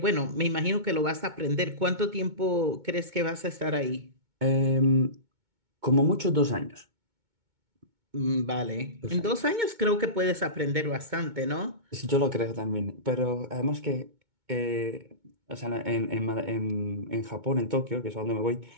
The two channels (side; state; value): left; late; 2.2 ms